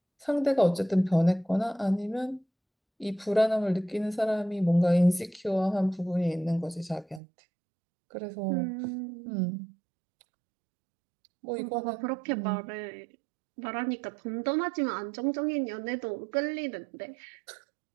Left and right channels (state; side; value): drops out; left; at 7.2 s